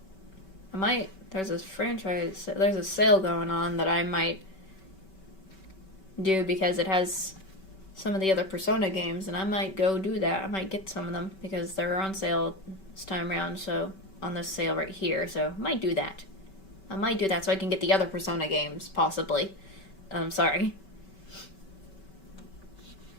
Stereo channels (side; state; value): right; late; 5.2 ms